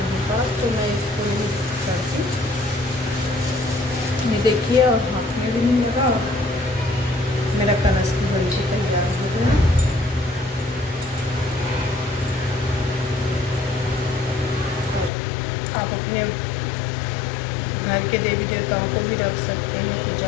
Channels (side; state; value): right; drops out; at 15.1 s